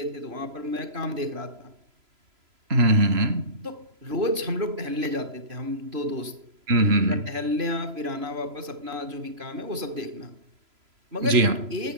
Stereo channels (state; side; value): late; left; 3.0 ms